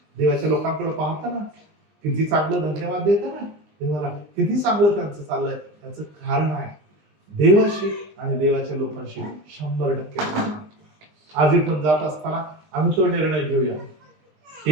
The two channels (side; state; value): left; late; 19 ms